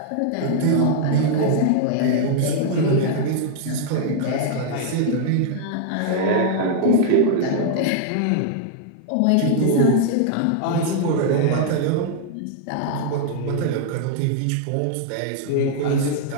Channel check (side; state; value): both; different; correlation -0.01